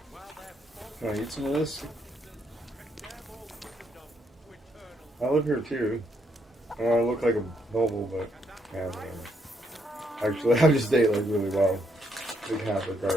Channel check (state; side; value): normal; both; correlation 0.74